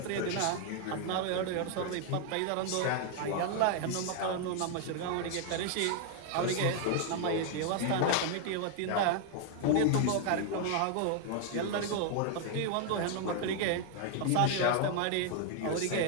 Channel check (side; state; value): both; different; correlation 0.00